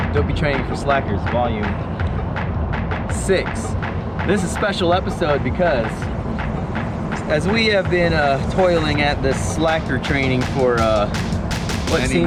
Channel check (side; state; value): both; identical; correlation 1.00